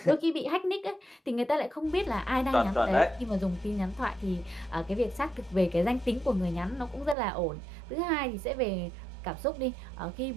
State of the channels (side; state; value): left; drops out; at 7.2 s